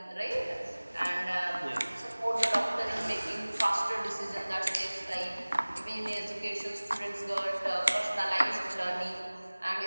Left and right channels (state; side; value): inverted; both; correlation -1.00